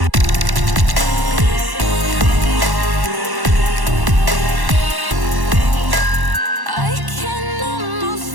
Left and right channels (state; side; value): late; left; 1.1 ms